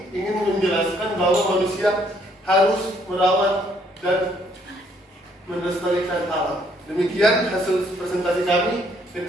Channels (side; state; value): both; normal; correlation 0.67